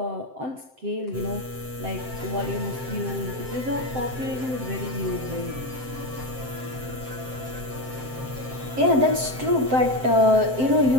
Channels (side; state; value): left; late; 7.7 ms